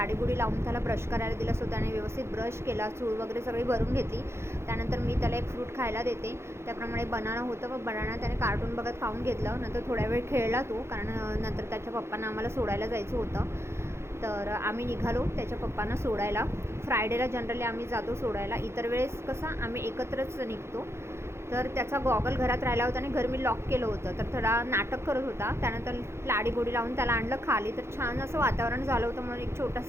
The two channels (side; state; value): left; late; 0.13 ms